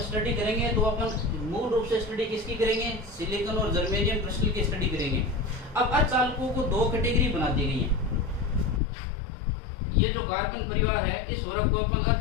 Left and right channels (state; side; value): drops out; right; at 8.8 s